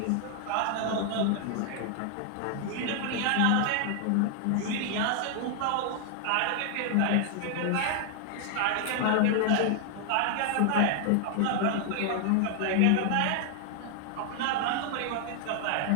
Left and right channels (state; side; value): different; both; correlation 0.00